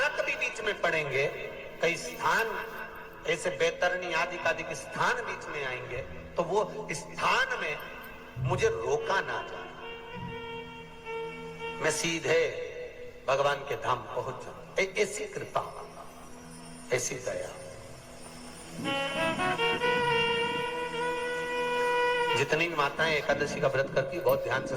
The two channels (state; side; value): identical; both; correlation 1.00